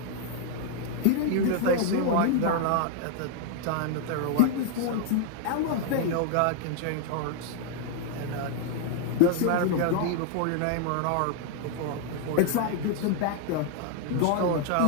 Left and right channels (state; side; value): different; both; correlation 0.00